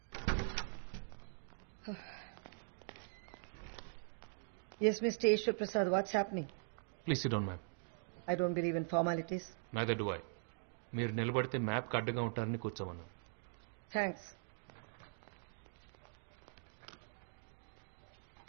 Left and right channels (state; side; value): silent; left; digital silence